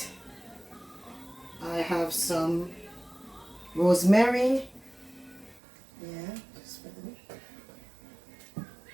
I have some rosemary. Yeah, just put it.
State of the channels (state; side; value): drops out; left; at 5.6 s